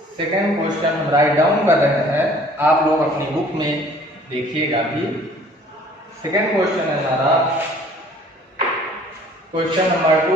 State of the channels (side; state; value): both; normal; correlation 0.53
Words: सेकेंड क्वेश्चन हम राइट डाउन कर रहे हैं, आप लोग अपनी बुक में देखिएगा भी। सेकेंड क्वेश्चन है हमारा question number